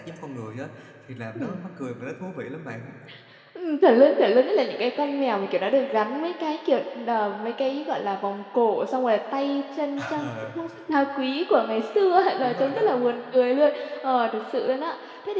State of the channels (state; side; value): identical; both; correlation 1.00